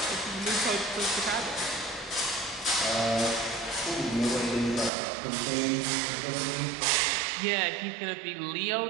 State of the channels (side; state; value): left; drops out; at 4.9 s